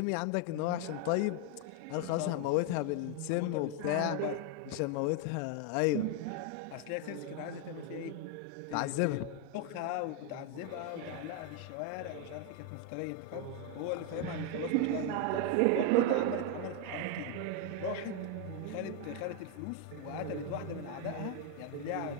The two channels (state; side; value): different; both; correlation 0.01